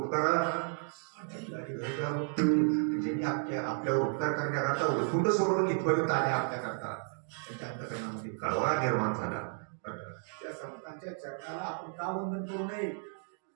ज्यांनी आपल्यावर उपकार करण्याकरता उठून सोडून इथपर्यंत आले आपल्याकरता, त्यांच्या अंतकरणामध्ये कळवळा निर्माण झाला. त्या संतांच्या चरणाला आपण का वंदन करू नये?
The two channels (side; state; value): left; silent; 56 dB below the other